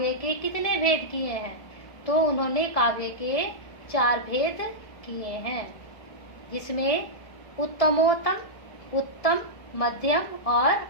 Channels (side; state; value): right; late; 1.6 ms